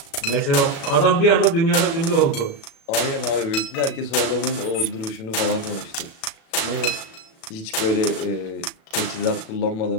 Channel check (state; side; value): late; right; 36 ms